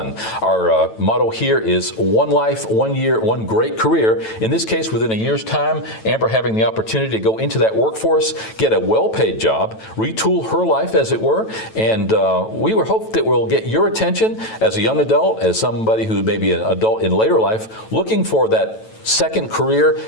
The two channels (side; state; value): right; late; 9.1 ms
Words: Our motto here is one life, 1 year, one great career. In this case, within a year's time, Amber having the opportunity to go into that workforce, get a well-paid job, retool her life, as it were, and we hope that we'll get your attention as a young adult, as somebody who may be an adult in later life, looking for that second career.